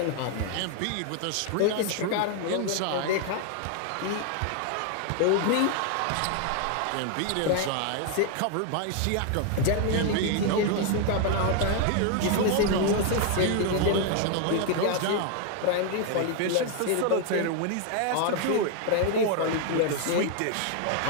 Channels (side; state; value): both; different; correlation 0.00